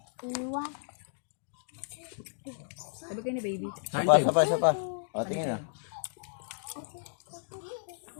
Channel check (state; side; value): silent; right; digital silence